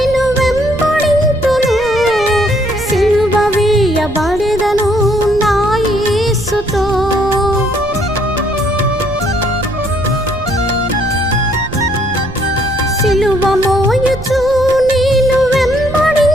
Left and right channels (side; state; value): right; noise; rumble, 13 dB below the sound